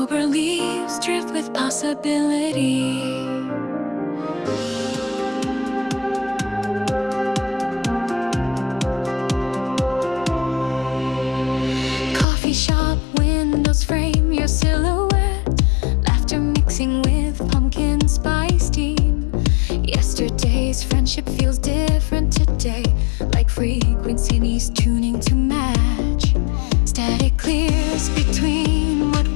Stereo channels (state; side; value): drops out; right; at 12.2 s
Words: leaves drift with possibility. Coffee shop windows frame your silhouette, laughter mixing with pumpkin spice steam. Yesterday's friendship feels different today, like frequencies tuning to match. Static clears between what